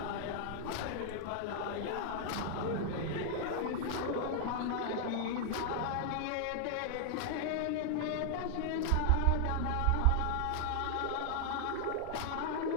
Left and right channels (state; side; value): different; both; correlation 0.00